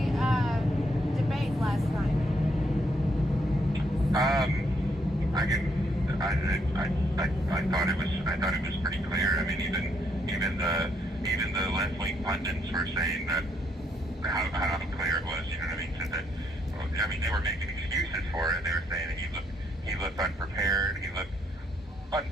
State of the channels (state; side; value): normal; both; correlation 0.73